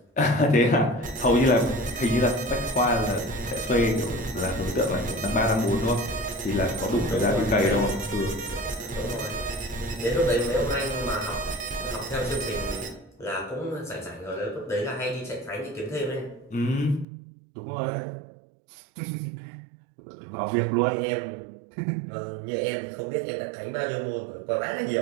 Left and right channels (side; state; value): left; drops out; at 17.1 s